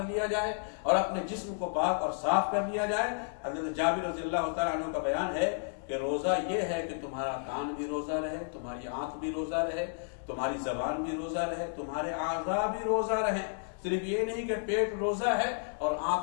لیا جائے، اور اپنے جسم کو پاک اور صاف کر لیا جائے۔ حضرت جابر رضی اللہ تعالیٰ عنہ کا بیان ہے کہ روزہ یہ ہے کہ تمہارا کان بھی روزہ رہے، تمہاری آنکھ بھی روزہ رہے، تمہاری زبان بھی روزہ رہے، تمہارے اعضاء بھی روزہ رہے۔ صرف یہ نہیں کہ پیٹ روزہ ہے اور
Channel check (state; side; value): silent; right; 56 dB below the other